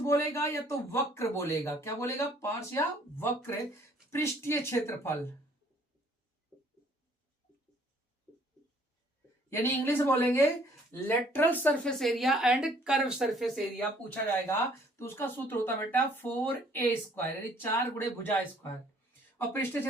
बोलेगा या तो वक्र बोलेगा? क्या बोलेगा? पार्श्व या वक्र पृष्ठीय क्षेत्रफल, यानी इंग्लिश बोलेंगे lateral surface area and curve surface area पूछा जाएगा तो उसका सूत्र होता है बेटा 4a², यानी 4 गुणे भुजा स्क्वायर, और पृष्ठीय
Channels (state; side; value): normal; both; correlation 0.60